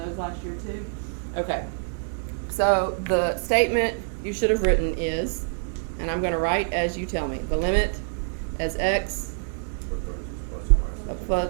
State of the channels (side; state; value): left; silent; digital silence